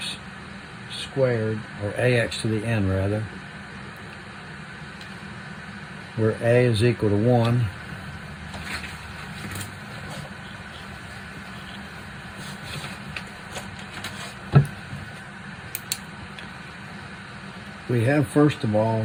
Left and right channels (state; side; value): identical; both; correlation 1.00